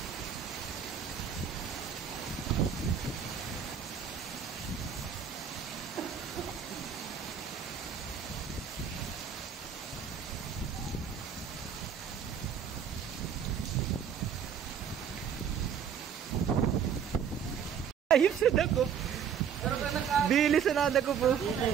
Ayos sa dako. Bilis na nada ko po.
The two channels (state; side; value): quieter; left; 7.7 dB